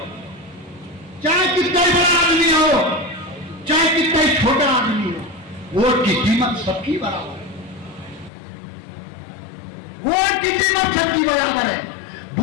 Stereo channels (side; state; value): right; drops out; at 8.3 s